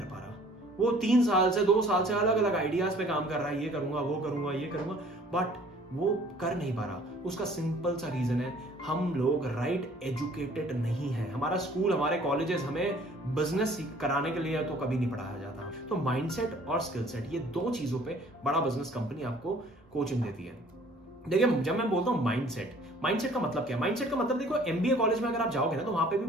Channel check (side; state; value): both; normal; correlation 0.54